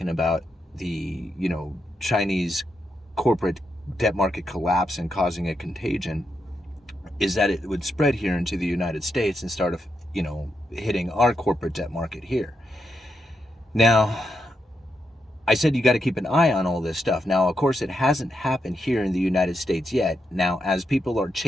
about the, Chinese corporate debt market collapse and causing a contagion is that it would spread here into the United States and start, hitting our corporate debt market here. Now, I said you got to keep an eye on all this stuff. Now, of course, it hasn't happened here in the United States yet. Now, as people are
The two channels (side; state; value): both; normal; correlation 0.83